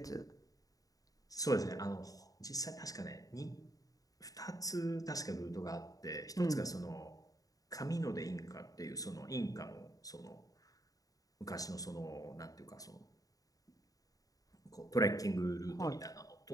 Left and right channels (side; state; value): right; late; 0.17 ms